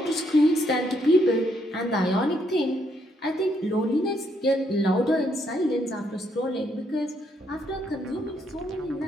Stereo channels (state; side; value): normal; both; correlation 0.74